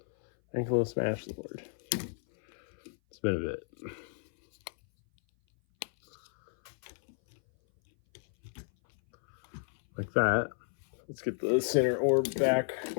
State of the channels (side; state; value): right; silent; 56 dB below the other